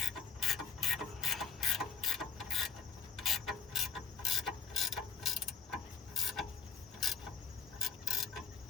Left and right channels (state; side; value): quieter; right; 6.6 dB